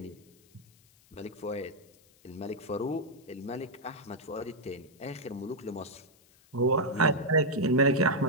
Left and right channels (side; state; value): left; noise; hiss, 29 dB below the sound